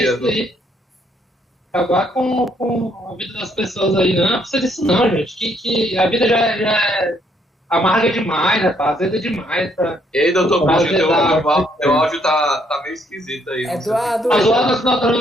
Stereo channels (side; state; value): both; normal; correlation 0.70